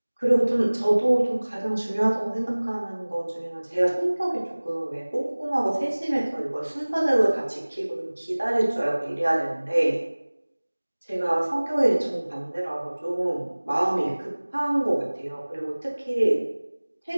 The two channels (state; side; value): inverted; both; correlation -1.00